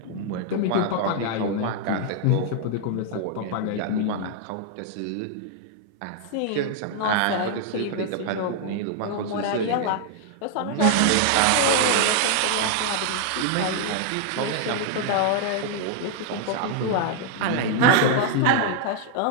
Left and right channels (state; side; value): different; both; correlation 0.00